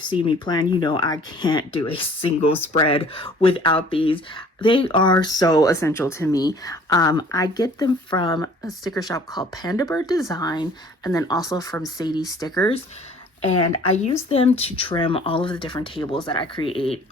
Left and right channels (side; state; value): both; normal; correlation 0.53